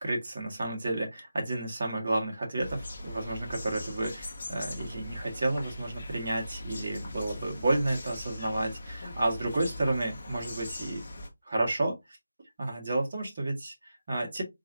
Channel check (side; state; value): both; inverted; correlation -0.90